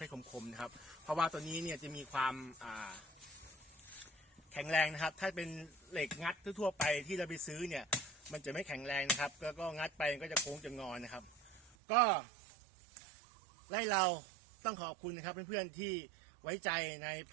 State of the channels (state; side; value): drops out; left; at 11.8 s